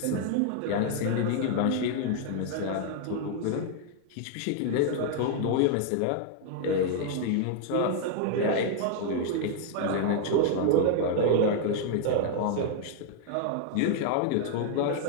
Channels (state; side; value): different; both; correlation 0.00